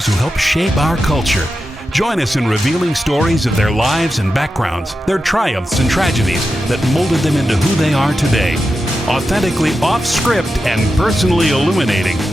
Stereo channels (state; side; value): normal; both; correlation 0.90